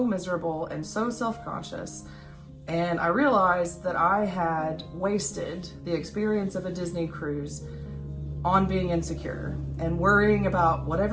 miserable and so self-conscious. And I realized that I had wasted the experience of a Disney cruise on being insecure and worrying about what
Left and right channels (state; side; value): identical; both; correlation 1.00